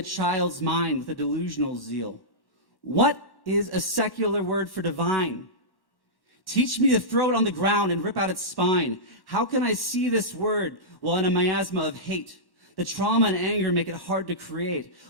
child's mind with a delusional zeal. What is a secular word for divine? Teach me to throw it on the ground and rip out its spine. How can I see this word while in a miasma of hate? The trauma and anger make it hard to create.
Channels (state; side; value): late; right; 1.1 ms